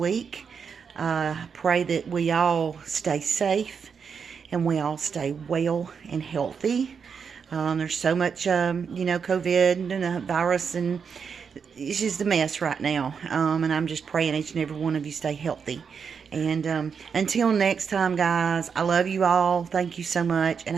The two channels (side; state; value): left; quieter; 6.3 dB